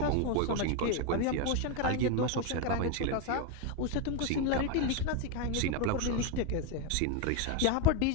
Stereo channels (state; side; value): different; both; correlation 0.02